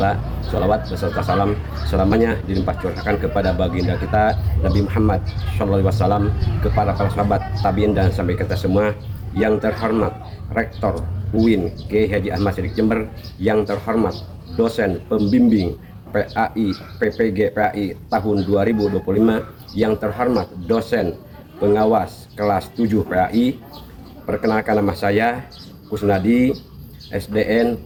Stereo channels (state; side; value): identical; both; correlation 1.00